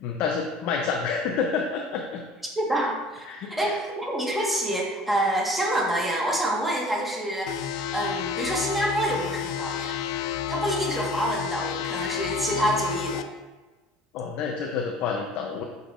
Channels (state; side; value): normal; both; correlation 0.46